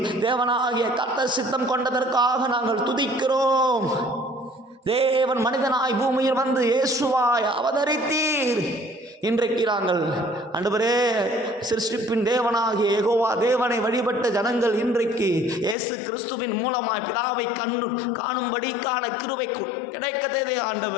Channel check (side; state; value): right; drops out; at 15.8 s